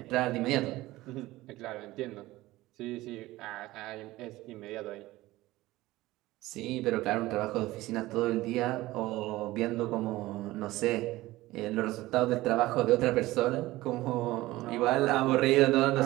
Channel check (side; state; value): left; quieter; 17.9 dB